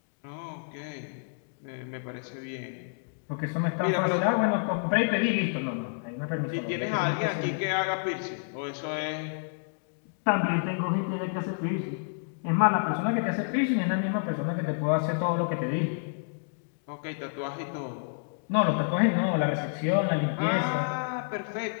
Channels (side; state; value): right; silent; digital silence